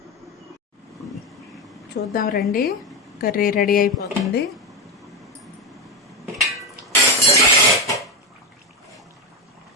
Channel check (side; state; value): both; normal; correlation 0.13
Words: రండి. కర్రీ రెడీ అయిపోతుంది.